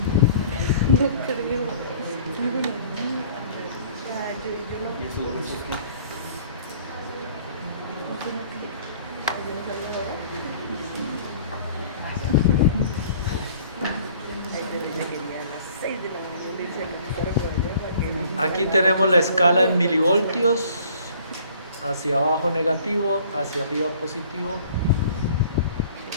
¿Y esos huesos qué? Aquí tenemos la escala en milivoltios, hacia abajo negativo, hacia arriba positivo,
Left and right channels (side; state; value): both; inverted; correlation -0.53